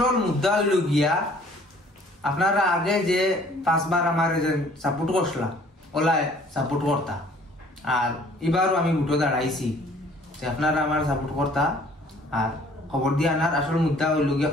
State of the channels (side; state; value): both; normal; correlation 0.56